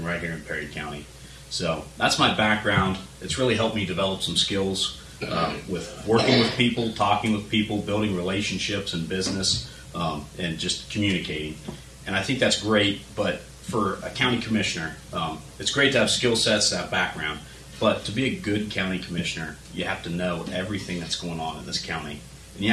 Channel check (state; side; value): identical; both; correlation 1.00